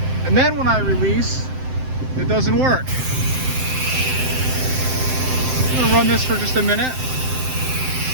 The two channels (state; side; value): late; left; 7.7 ms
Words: And then when I release, it doesn't work. I'm gonna run this for just a minute.